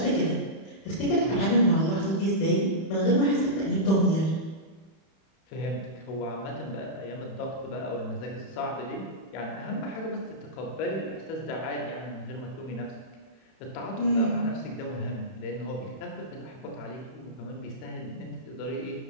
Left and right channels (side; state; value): right; late; 31 ms